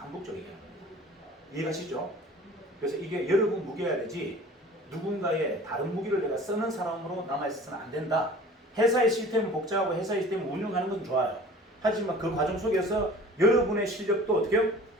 얘기하는 겁니다. 이해가시죠? 그래서 이게 여러분 무기여야 되지 누군가의 다른 무기를 내가 쓰는 사람으로 남아있어서는 안 된다. 회사의 시스템은 복잡하고 회사의 시스템을 운영하는 건 좋아요. 하지만 그 과정 속에서 여러분의 실력도 어떻게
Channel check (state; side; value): normal; both; correlation 0.44